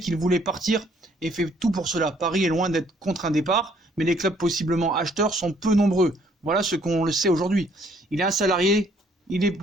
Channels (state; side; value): normal; both; correlation 0.64